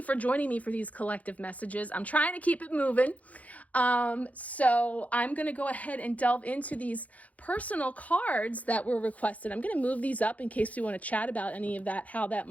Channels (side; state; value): right; late; 0.070 ms